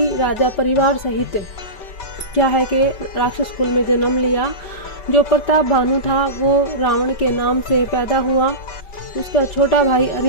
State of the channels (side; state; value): right; late; 5.2 ms